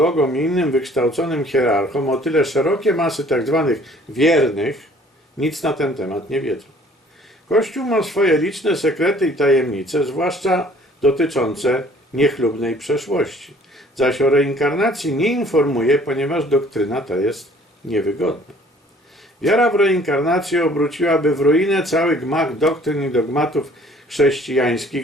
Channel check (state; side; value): normal; both; correlation 0.55